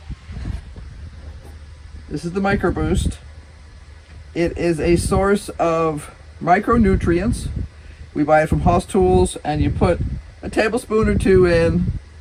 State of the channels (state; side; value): identical; both; correlation 1.00